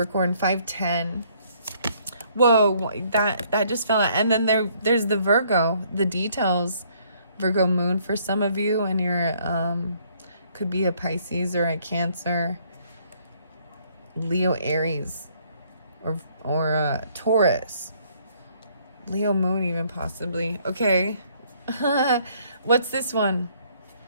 510. Whoa, that just fell out. And then there's the Virgo, the details. Virgo moon for some of you, and you're could be a Pisces or a Cancer, Leo, Aries, or a Taurus, Leo moon even possibly. Okay. What's this one?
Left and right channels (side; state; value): both; inverted; correlation -0.65